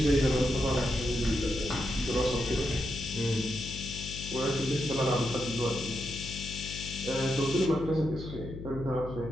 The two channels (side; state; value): left; noise; hum, 10 dB below the sound